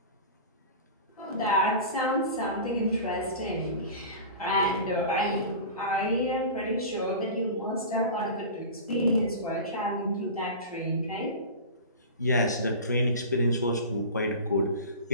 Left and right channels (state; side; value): inverted; both; correlation -0.32